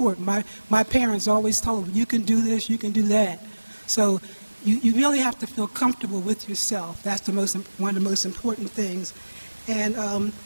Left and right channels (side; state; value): both; inverted; correlation -1.00